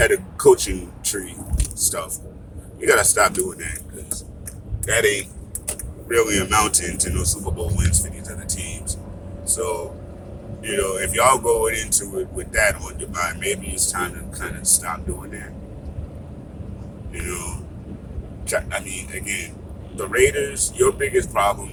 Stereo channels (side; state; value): both; identical; correlation 1.00